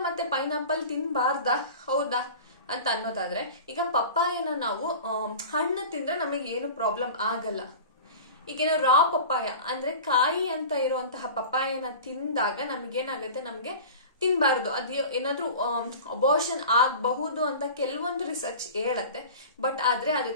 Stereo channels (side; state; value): both; inverted; correlation -0.37